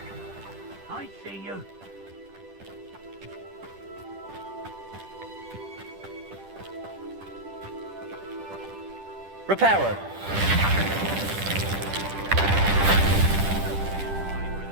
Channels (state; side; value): late; left; 10 ms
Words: I see you. Reparo.